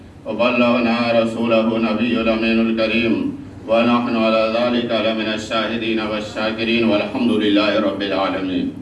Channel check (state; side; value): identical; both; correlation 1.00